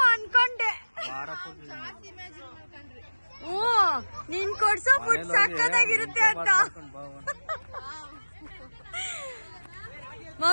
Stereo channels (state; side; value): inverted; both; correlation -1.00